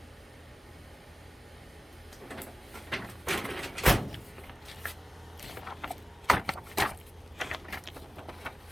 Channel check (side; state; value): both; normal; correlation 0.96